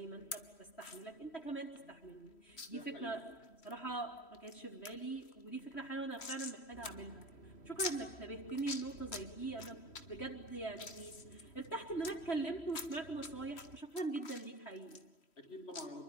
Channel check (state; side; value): late; right; 3.1 ms